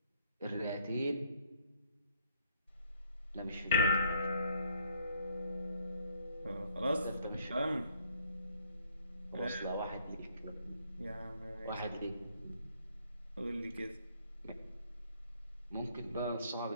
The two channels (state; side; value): inverted; both; correlation -0.67